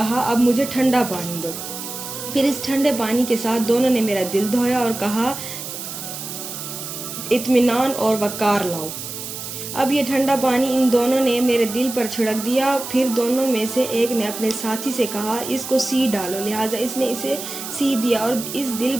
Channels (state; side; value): noise; right; hiss, 8 dB below the sound